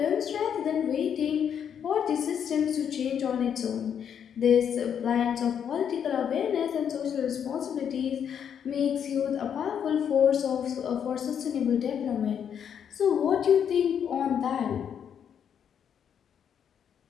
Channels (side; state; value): right; quieter; 8.3 dB